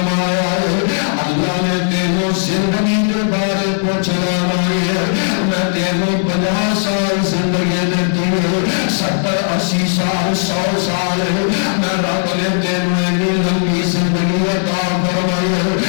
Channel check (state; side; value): silent; right; digital silence